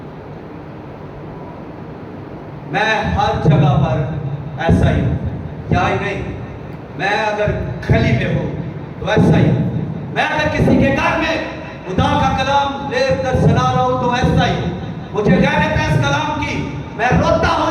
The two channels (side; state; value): both; identical; correlation 1.00